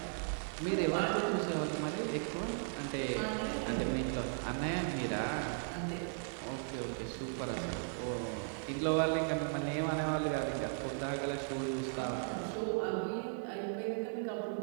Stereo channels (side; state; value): left; silent; 53 dB below the other